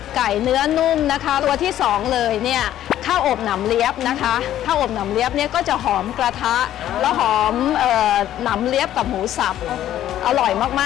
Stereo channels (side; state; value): right; quieter; 12.1 dB